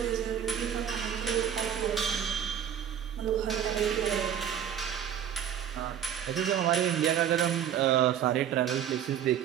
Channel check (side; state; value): left; quieter; 9.3 dB